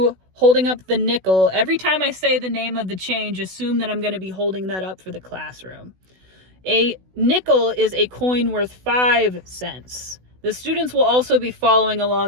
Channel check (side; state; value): left; late; 16 ms